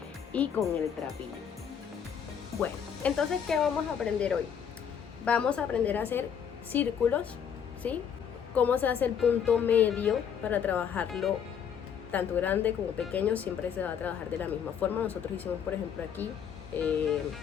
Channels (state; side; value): quieter; right; 7.9 dB